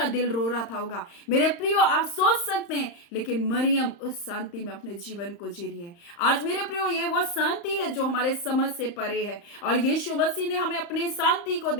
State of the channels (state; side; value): late; right; 35 ms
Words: दिल रो रहा था होगा। मेरे प्रियो, आप सोच सकते हैं, लेकिन मरियम उस शांति में अपने जीवन को जी रही है। आज मेरे प्रियो, ये वो शांति है जो हमारे समझ से परे है, और यीशु मसीह ने हमें अपने शांति को